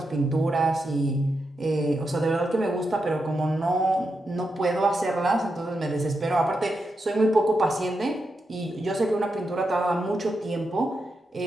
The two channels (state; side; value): normal; both; correlation 0.86